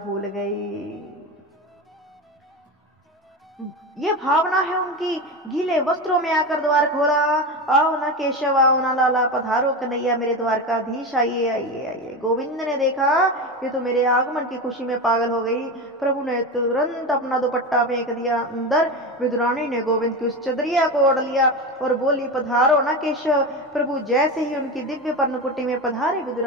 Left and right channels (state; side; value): normal; both; correlation 0.22